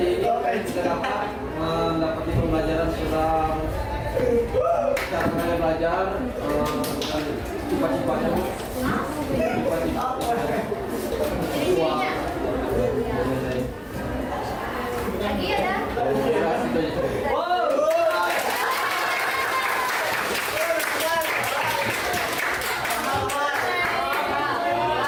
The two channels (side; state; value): both; identical; correlation 1.00